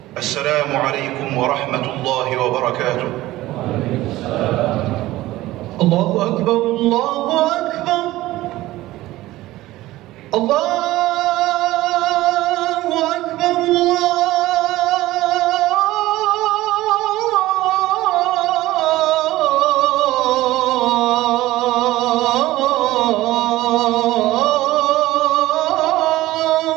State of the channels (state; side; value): quieter; left; 16.9 dB